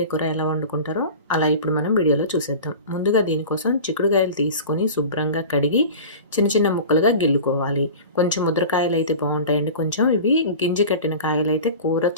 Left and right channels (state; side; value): inverted; both; correlation -0.35